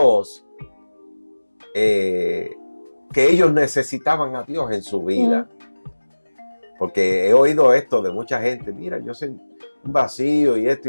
que ellos necesitaban a Dios en su vida. Porque he oído esto de mucha gente, mira, yo sé un vacío y esto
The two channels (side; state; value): both; inverted; correlation -1.00